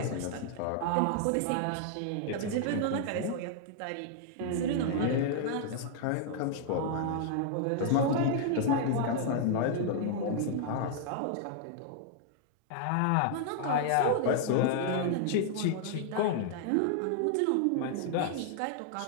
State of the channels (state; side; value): different; both; correlation 0.00